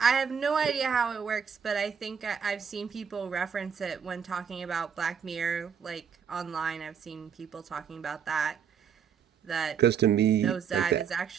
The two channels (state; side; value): quieter; left; 7.2 dB